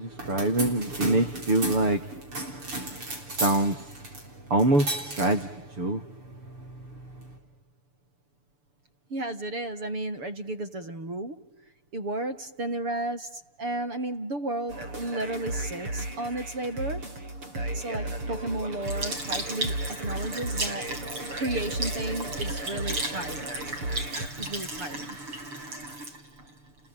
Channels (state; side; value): late; left; 6.9 ms